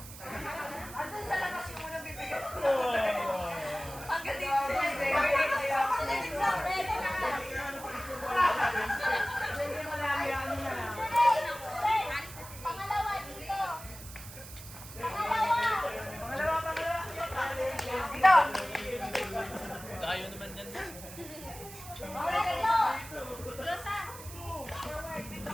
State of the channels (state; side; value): noise; right; hiss, 14 dB below the sound